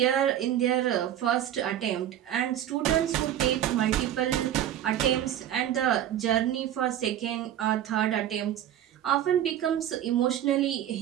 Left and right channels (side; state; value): left; quieter; 11.2 dB